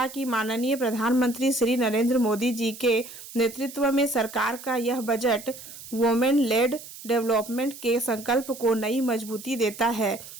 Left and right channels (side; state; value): right; noise; hiss, 15 dB below the sound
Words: कि माननीय प्रधानमंत्री श्री नरेंद्र मोदी जी के नेतृत्व में सरकार का यह बजट वुमेन लेड डेवलपमेंट के संकल्प को नई मजबूती देता है,